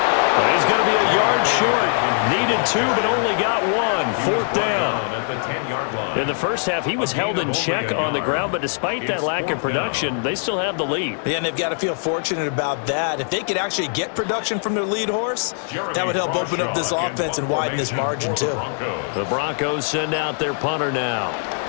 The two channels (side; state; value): right; silent; 64 dB below the other